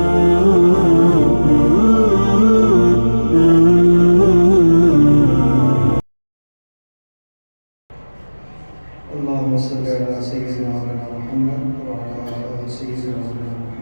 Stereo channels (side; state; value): both; inverted; correlation -1.00